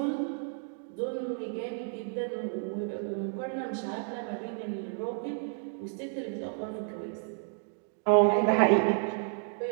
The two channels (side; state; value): left; silent; digital silence